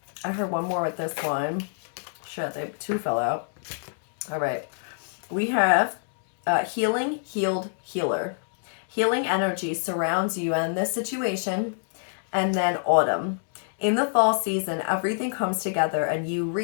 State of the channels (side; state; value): right; silent; digital silence